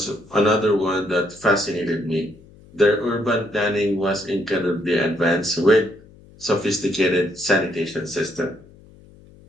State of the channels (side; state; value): left; noise; hum, 24 dB below the sound